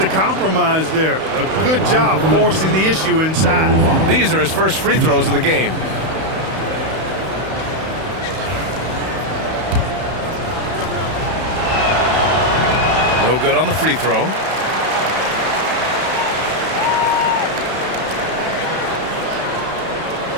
compromise there. A good job forcing the issue inside. These are his first free throws of the game. No good on the free throw.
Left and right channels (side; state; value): left; late; 31 ms